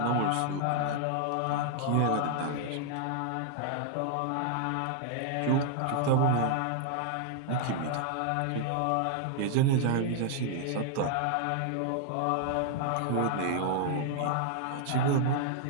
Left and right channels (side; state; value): both; different; correlation 0.00